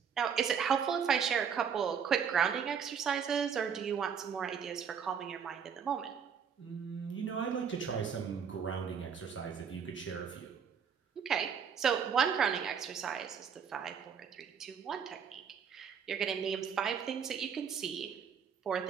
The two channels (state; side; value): quieter; left; 7.2 dB